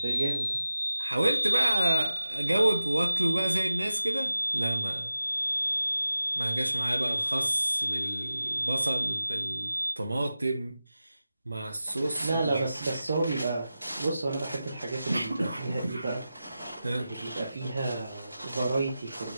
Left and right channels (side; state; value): both; inverted; correlation -0.93